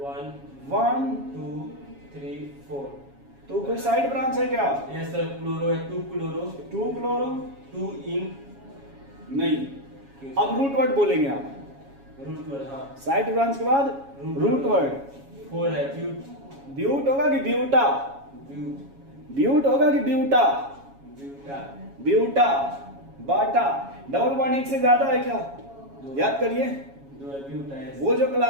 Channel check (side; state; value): left; late; 7.2 ms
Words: 1 1 2 3 4। तो कोई साइड ब्रांच है क्या? यस सर क्लोरो है 2 क्लोरो 2 क्लोरो 2 इन। नहीं। अब रूट वर्ड बोलेंगे आप। रूट वर्ड हाँ साइड ब्रांच के बाद रूट वर्ड। 4 है ब्यूट ब्यूट होगा कि ब्यूटा? ब्यूट ब्यूट होगा कि ब्यूटा? ब्यूटा ब्यूटा। बाटा। डबल बॉन्ड एक से ज्यादा है क्या? याद करिए 2 है ब्यूटा है। वो जो